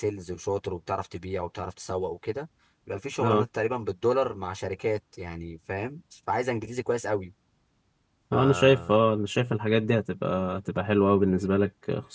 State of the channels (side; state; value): both; identical; correlation 1.00